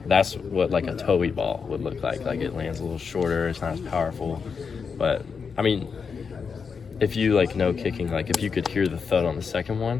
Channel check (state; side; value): quieter; right; 5.7 dB